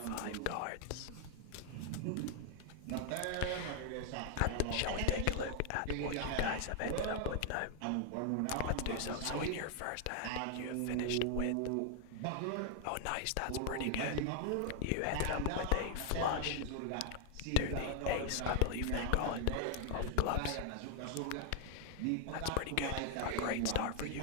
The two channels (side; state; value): both; different; correlation 0.00